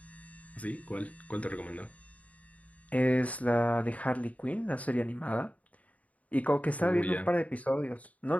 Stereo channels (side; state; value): right; late; 0.069 ms